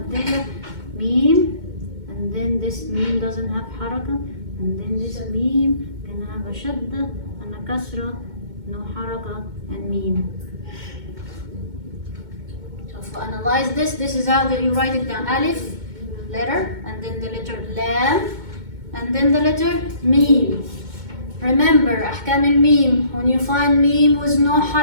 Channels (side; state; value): left; late; 2.2 ms